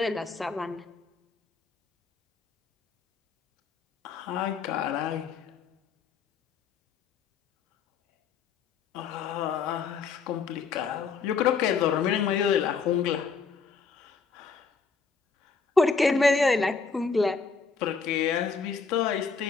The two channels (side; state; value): right; quieter; 5.1 dB